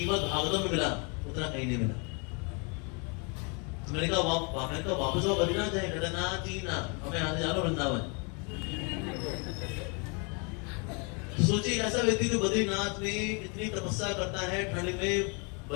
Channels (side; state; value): right; quieter; 34.0 dB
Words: भागवतम में मिला उतना कहीं नहीं मिला। तो मैंने कहा वापस आओ बद्रीनाथ जाए। कहता ना जी ना, हमें यहाँ से जाना वृंदावन। सोचिए ऐसा व्यक्ति जो बद्रीनाथ में इतनी तपस्या करता है, ठंड में